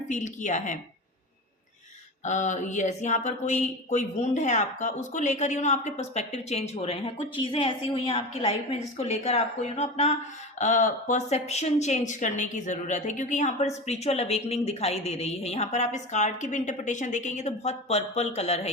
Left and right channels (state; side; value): normal; both; correlation 0.27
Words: फील किया है। यस यहाँ पर कोई वुंड है आपका, उसको लेकर आपके पर्सपेक्टिव चेंज हो रहे हैं। कुछ चीज़ें ऐसी हुई हैं आपकी लाइफ में जिसको लेकर आपको अपना परसेप्शन चेंज करने की ज़रूरत है, क्योंकि यहाँ पर स्पिरिचुअल अवेकनिंग दिखाई दे रही है। यहाँ पर आप इस कार्ड की भी इंटरप्रिटेशन देखेंगे तो बहुत पर्पल कलर